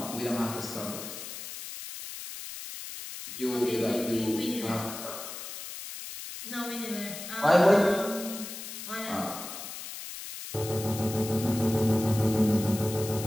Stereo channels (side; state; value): left; noise; hiss, 10 dB below the sound